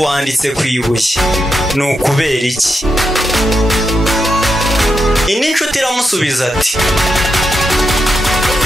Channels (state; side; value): normal; both; correlation 0.85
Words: wanditse ku ibuye, ni ukubera iki? Indi nshuti iramusubiza ati,